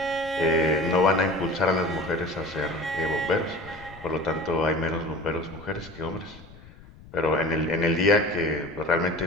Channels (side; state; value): left; noise; rumble, 20 dB below the sound